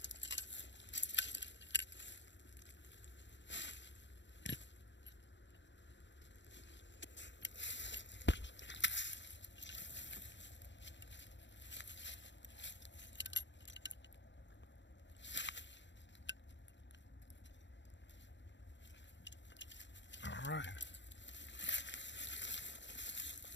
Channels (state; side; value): late; right; 0.53 ms